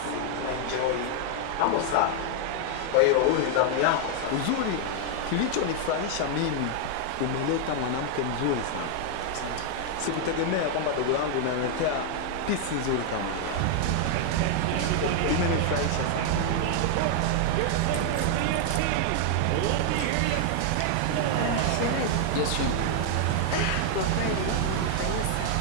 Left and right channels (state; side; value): different; both; correlation 0.00